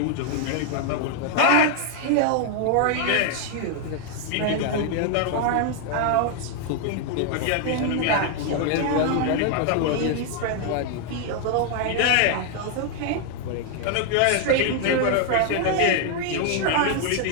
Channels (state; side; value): different; both; correlation 0.00